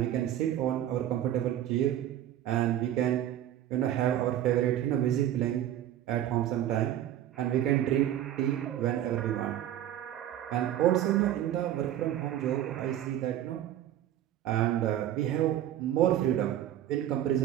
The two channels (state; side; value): quieter; left; 12.0 dB